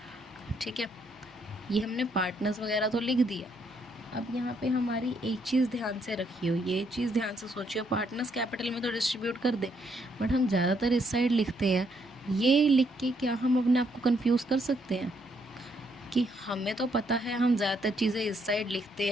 ठीक है, ये हमने पार्टनर्स वगैरह तो लिख दिया। अब यहाँ पे हमारी एक चीज़ ध्यान से रखियो, ये चीज़ ध्यान से सोचियो, पार्टनर्स कैपिटल में तो डिस्ट्रीब्यूट कर दे, बट हम ज़्यादातर इस साइड लिखते हैं। ये लिख के क्या हम अपने आप को कंफ्यूज कर सकते हैं कि हमें तो पता है हम ज़्यादातर चीज़ें इस साइड लिखते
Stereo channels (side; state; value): both; normal; correlation 0.73